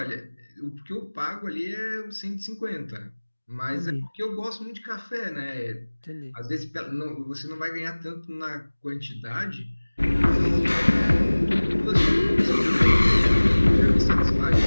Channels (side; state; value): both; inverted; correlation -1.00